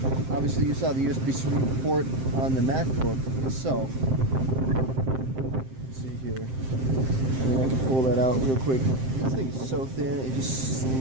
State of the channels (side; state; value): left; late; 7.6 ms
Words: obviously, you saw the USB-C port on the MacBook itself. Let's see here. out real quick. This thing is so thin, it just